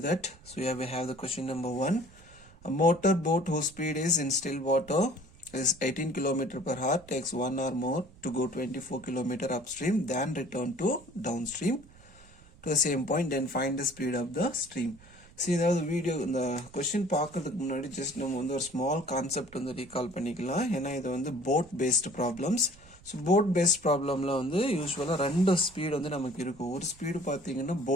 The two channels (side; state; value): right; noise; rumble, 24 dB below the sound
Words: that. So here we have the question number 1. A motor boat whose speed is in still water is 18 km per hour takes 1 hour more to go 24 km upstream than return to downstream to the same point, then find the speed of the stream. See, the video இந்த கொஸ்டின் பார்க்கறதுக்கு முன்னாடி ஜஸ்ட் நம்ம வந்து ஒரு ஸ்மால் கான்செப்ட் வந்து ரீகால் பண்ணிக்கலாம். ஏன்னா இது வந்து boat based problems. So boat based ப்ராப்ளமில் வந்து யூஸ்வலாக ரெண்டு ஸ்பீடு வந்து நமக்கு இருக்கும். ஒரு ஸ்பீடு பார்த்தீங்கன்னா